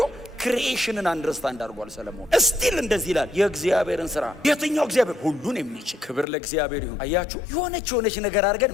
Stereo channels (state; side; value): drops out; right; at 6.2 s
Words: ክሪኤሽንን አንደርስታንድ አድርጓል ሰለሞን። እስቲል እንደዚህ ይላል የእግዚአብሔርን ስራ። የትኛው እግዚአብሔር? ሁሉን የሚችል። ክብር ለእግዚአብሔር ይሁን። አያችሁ፣ የሆነች ነገር አድርገን